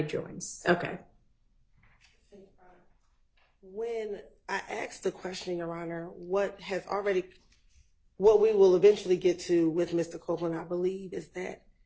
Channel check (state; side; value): identical; both; correlation 1.00